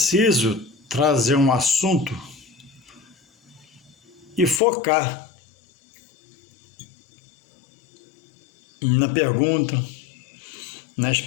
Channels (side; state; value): right; drops out; at 4.6 s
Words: trazer um assunto e focar na pergunta, na